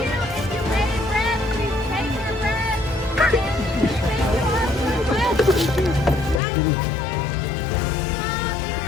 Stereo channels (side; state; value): right; drops out; at 6.4 s